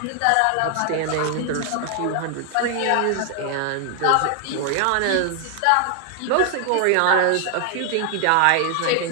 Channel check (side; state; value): both; different; correlation 0.00